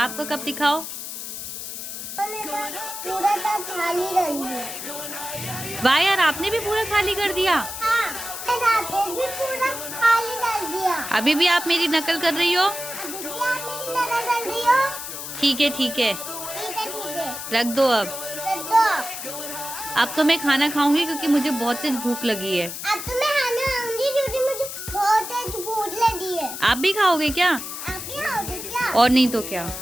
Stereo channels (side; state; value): left; noise; hiss, 8 dB below the sound